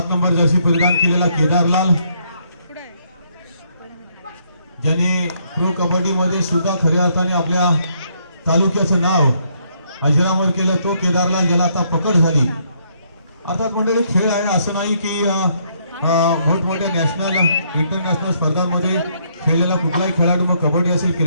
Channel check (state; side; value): inverted; both; correlation -0.71